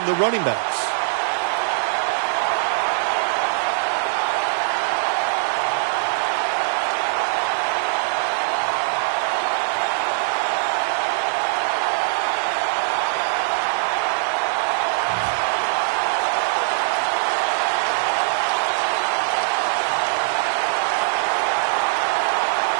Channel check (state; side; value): silent; left; 58 dB below the other